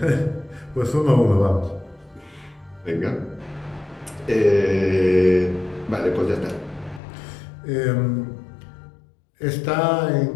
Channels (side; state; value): right; drops out; at 7.0 s